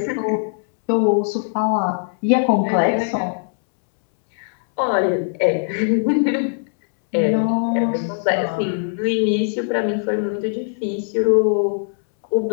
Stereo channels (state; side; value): silent; right; 66 dB below the other